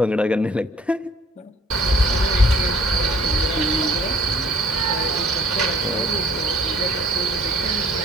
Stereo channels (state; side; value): normal; both; correlation 0.56